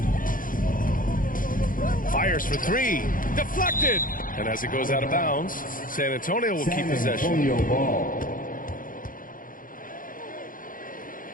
Fires for three. Deflected. And as it goes out of bounds, San Antonio will keep possession. San Antonio ball.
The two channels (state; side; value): late; right; 0.40 ms